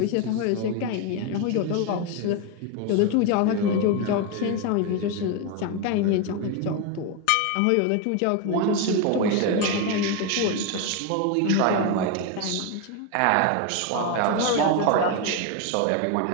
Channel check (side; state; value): both; different; correlation 0.02